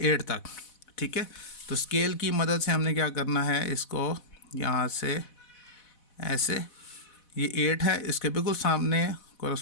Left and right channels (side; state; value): right; late; 4.1 ms